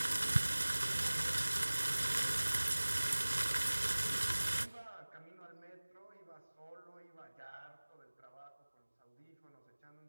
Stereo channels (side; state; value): both; inverted; correlation -1.00